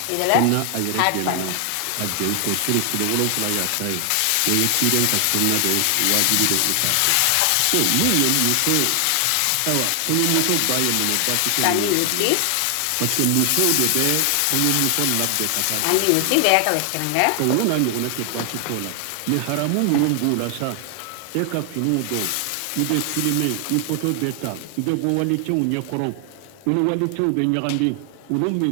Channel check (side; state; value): both; different; correlation 0.00